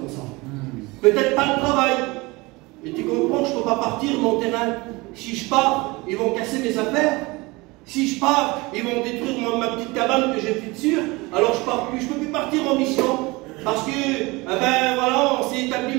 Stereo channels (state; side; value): quieter; left; 23.6 dB